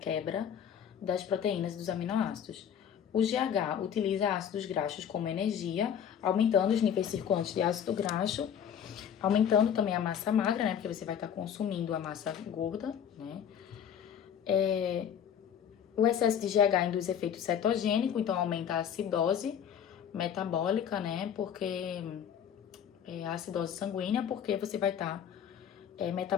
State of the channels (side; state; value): right; quieter; 8.7 dB